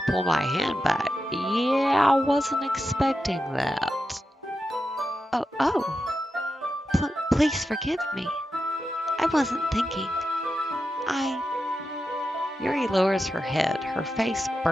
pull my hand back. Yeah, I wasn't expecting that. Oh, please forgive me. I wasn't thinking. Yuri lowers her head, her face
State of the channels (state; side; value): normal; both; correlation 0.90